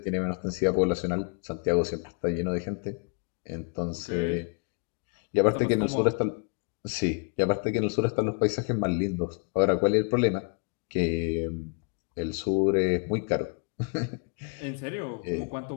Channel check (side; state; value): right; quieter; 39.5 dB